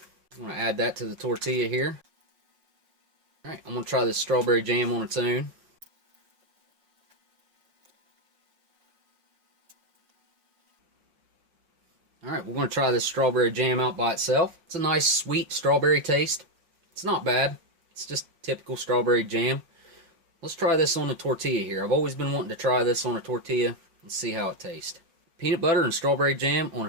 I'm going to add that to the tortilla here. Alright, I'm going to try this strawberry jam on its own. Alright, we're going to try this strawberry jam out by itself. It's a nice sweet strawberry taste. It's not bad. It's just typical strawberry jam. Let's try this on a tortilla here. I've always been wanting to try this on a tortilla and see how it tastes. Peanut butter and strawberry jam on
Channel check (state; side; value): late; left; 5.5 ms